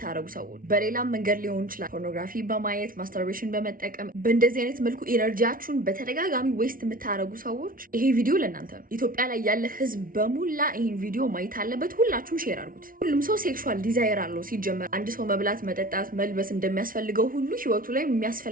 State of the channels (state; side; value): late; left; 0.41 ms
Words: ሰዎች በሌላም መንገድ ሊሆን ይችላል፣ ፖርኖግራፊ በማየት ማስተርቤሽን በመጠቀም በእንደዚህ አይነት መልኩ ኢነርጂያችሁን በተደጋጋሚ ዌስት የምታደርጉ ሰዎች ይሄ ቪዲዮ ለእናንተ ነው። ኢትዮጵያ ላይ ያለ ህዝብ በሙላ ይህን ቪዲዮ ማየት አለበት። ሁላችሁም ሼር አድርጉት። ሁሉም ሰው ሴክሹዋል ዲዛይር አለው። ሲጀመር አንድ ሰው መብላት፣ መጠጣት፣ መልበስ እንደሚያስፈልገው ሁሉ ህይወቱ ላይ